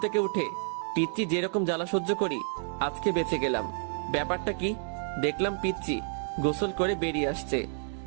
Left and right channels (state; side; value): silent; left; 58 dB below the other